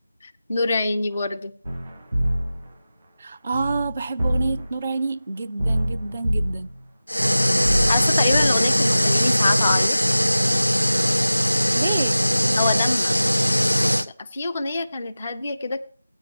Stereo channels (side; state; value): both; inverted; correlation -0.95